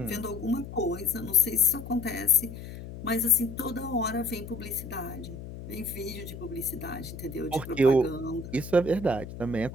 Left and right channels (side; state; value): left; noise; hum, 11 dB below the sound